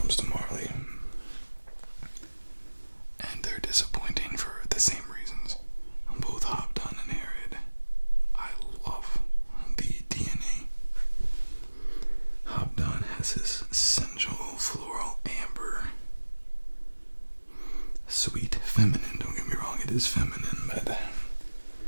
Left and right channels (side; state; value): both; inverted; correlation -1.00